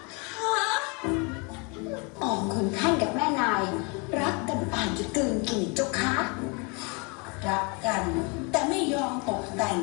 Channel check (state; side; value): quieter; right; 31.5 dB